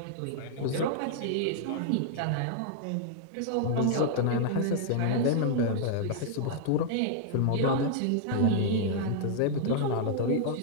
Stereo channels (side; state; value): both; different; correlation -0.01